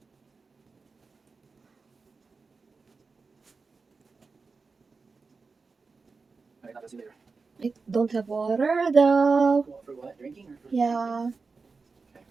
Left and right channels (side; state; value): left; quieter; 4.4 dB